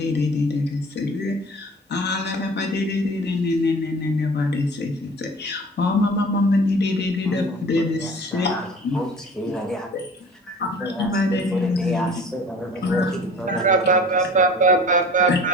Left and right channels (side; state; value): both; normal; correlation 0.44